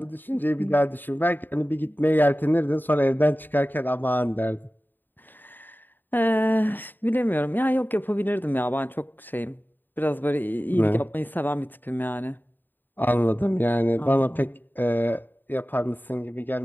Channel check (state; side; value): late; right; 0.091 ms